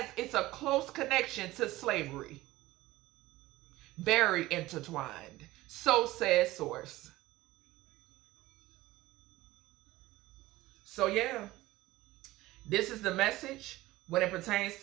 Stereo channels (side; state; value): left; quieter; 17.8 dB